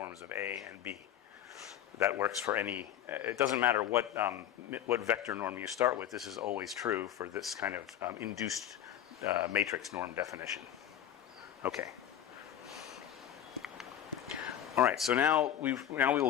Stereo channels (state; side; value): quieter; right; 10.6 dB